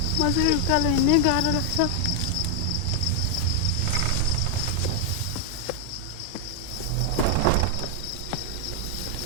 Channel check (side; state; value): both; different; correlation 0.00